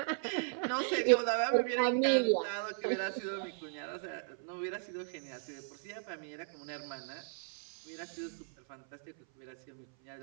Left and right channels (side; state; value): left; silent; 54 dB below the other